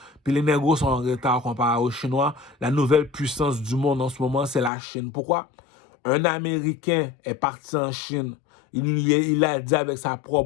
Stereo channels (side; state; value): right; drops out; at 4.7 s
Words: Puis les négros sont en retard comparé aux Chinois. La nouvelle puissance du monde en ce moment, c'est la Chine. Pourquoi? Un Américain est parti en Chine. Il a dit avec sa